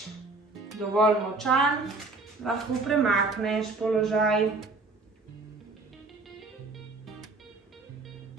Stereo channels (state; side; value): quieter; left; 3.5 dB